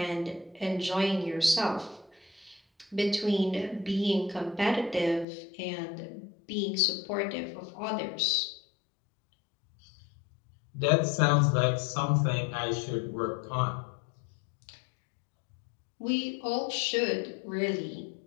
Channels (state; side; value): drops out; right; at 5.2 s